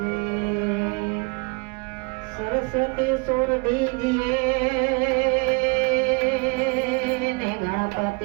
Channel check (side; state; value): left; quieter; 29.4 dB